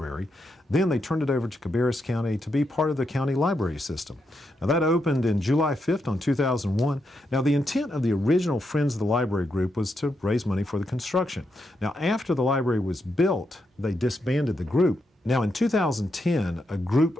then they turned it over to Cabarrus County to be part of the county library system. Now, that opened in July 5th on 2001. Now, the intent of the original Friends of the Library group was to raise money for the construction. Now, after the library was built, they disbanded the group. Now, in 2010, a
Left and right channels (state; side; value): normal; both; correlation 0.83